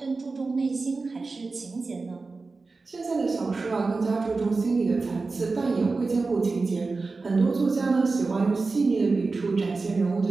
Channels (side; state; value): left; quieter; 3.9 dB